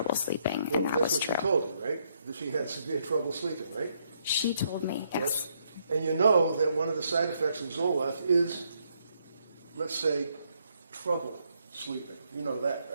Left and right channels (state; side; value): inverted; both; correlation -0.73